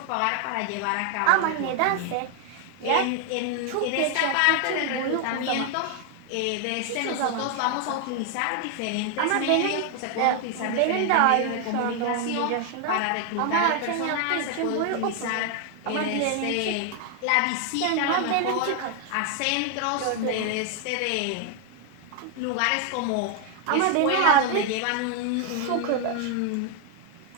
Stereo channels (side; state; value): both; different; correlation 0.01